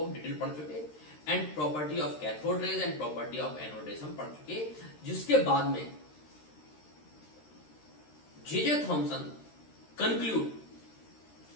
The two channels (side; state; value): right; late; 13 ms